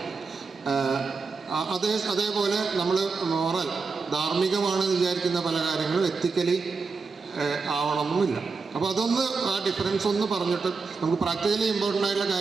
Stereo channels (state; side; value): quieter; left; 4.6 dB